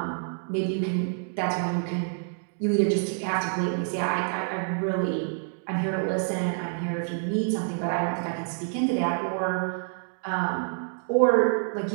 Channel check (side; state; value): left; silent; 60 dB below the other